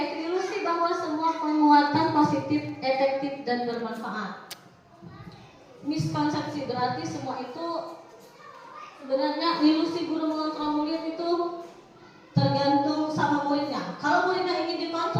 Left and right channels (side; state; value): both; identical; correlation 1.00